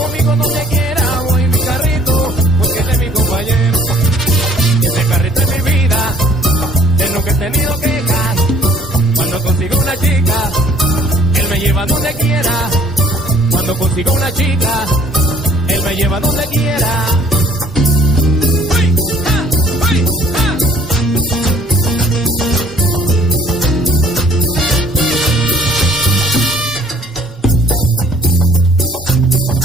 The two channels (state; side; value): normal; both; correlation 0.58